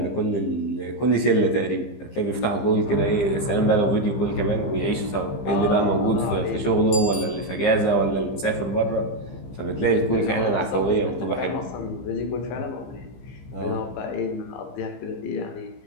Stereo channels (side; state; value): right; late; 15 ms